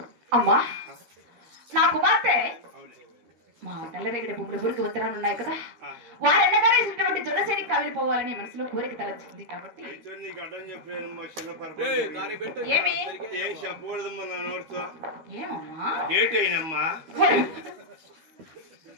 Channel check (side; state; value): left; late; 13 ms